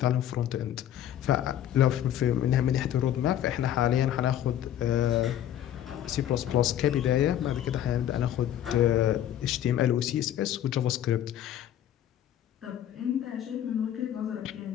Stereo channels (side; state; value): right; quieter; 11.2 dB